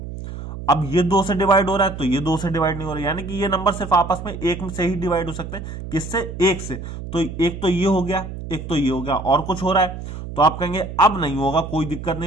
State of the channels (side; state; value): right; noise; hum, 9 dB below the sound